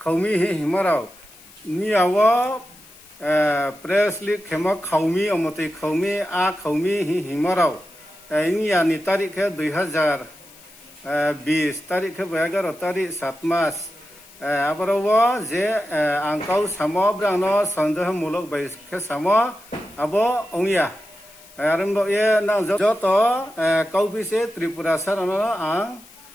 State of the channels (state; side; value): noise; left; hiss, 23 dB below the sound